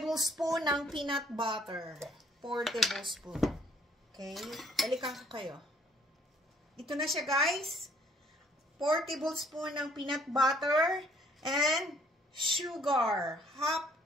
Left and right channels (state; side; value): normal; both; correlation 0.62